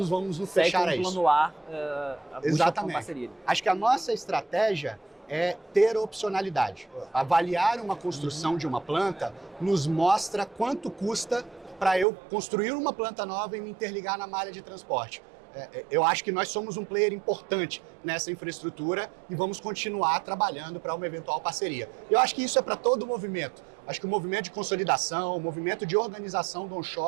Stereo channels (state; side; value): drops out; left; at 12.1 s